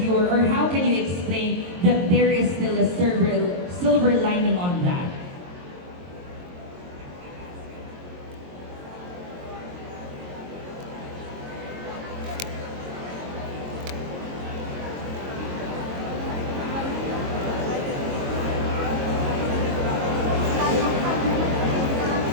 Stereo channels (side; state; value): left; late; 22 ms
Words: or how can you explain that there is still a silver lining on that?